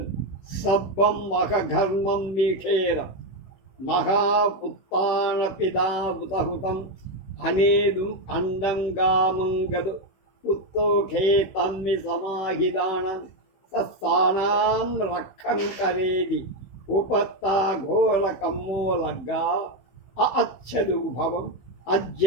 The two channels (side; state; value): right; late; 16 ms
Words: సబ్బం మఖఘర్మం మీఖేర మహాపుత్తాన పిదాబుతహుతం అనేదుం అండంగామంగదు పుత్తోఖే తమ్మి సమాహిదానం సత్సానాం రక్కం కరేది ఉపత్తా ఘోర కమ్మోలగ్గా అచ్చదు భవం